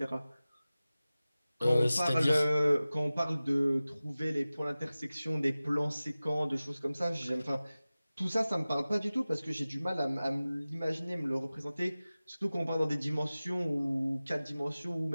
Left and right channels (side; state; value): both; inverted; correlation -0.97